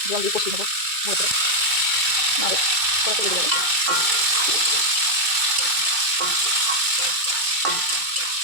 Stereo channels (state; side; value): late; left; 2.2 ms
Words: জল দিয়ে কষিয়ে নেবো ভালো করে, নাহলে কড়াতে লেগে যাবে।